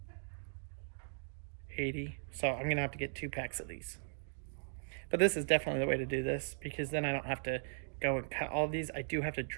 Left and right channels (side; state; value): left; silent; digital silence